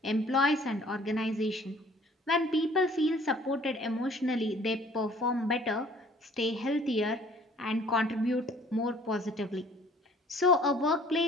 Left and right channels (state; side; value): normal; both; correlation 0.54